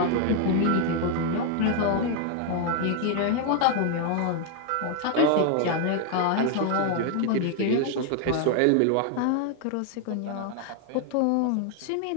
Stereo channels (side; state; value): both; different; correlation 0.00